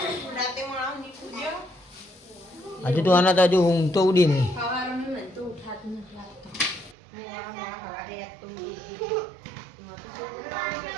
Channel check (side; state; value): left; drops out; at 7.0 s